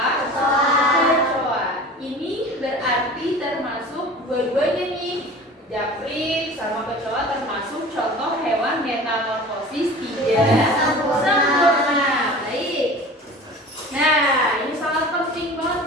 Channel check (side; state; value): both; normal; correlation 0.39